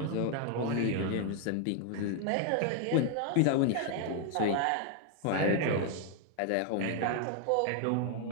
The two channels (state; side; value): different; both; correlation 0.00